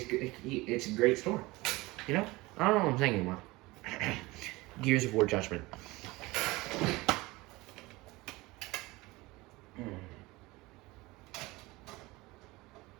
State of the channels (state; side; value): quieter; left; 21.5 dB